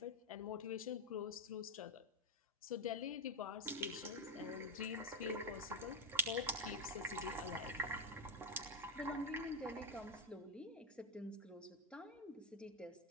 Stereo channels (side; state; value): both; normal; correlation 0.05